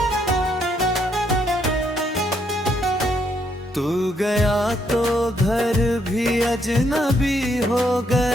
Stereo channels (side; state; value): both; normal; correlation 0.73